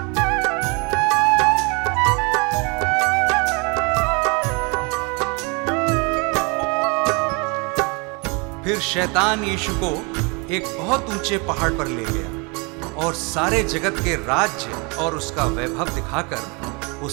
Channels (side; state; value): left; quieter; 30.7 dB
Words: फिर शैतान यीशु को एक बहुत ऊंचे पहाड़ पर ले गया और सारे जगत के राज्य और उसका वैभव दिखाकर